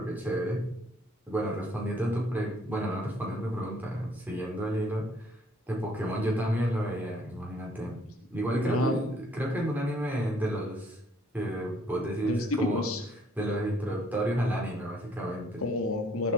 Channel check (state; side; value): normal; both; correlation 0.64